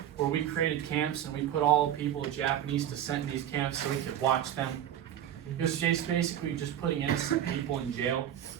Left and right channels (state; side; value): quieter; left; 10.8 dB